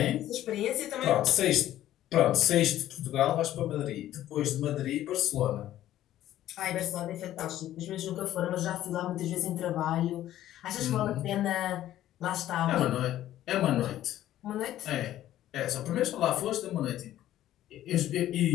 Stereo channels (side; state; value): right; quieter; 13.1 dB